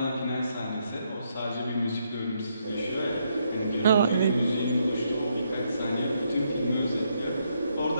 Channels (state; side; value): inverted; both; correlation -0.76